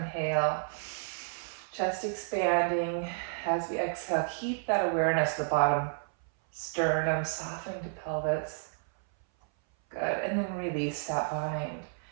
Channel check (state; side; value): silent; left; 57 dB below the other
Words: Chest expanding. As we exhale, keep that awareness of the bottom sternum softening to pelvis. Good, and then release that bind.